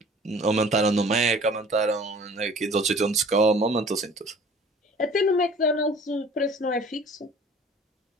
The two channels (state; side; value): normal; both; correlation 0.48